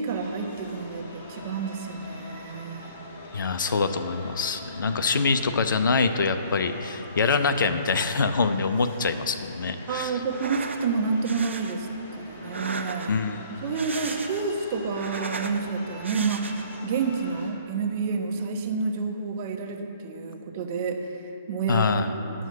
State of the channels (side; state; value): both; inverted; correlation -0.54